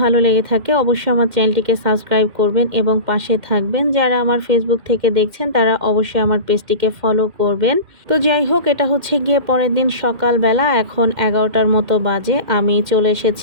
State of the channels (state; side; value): late; left; 2.1 ms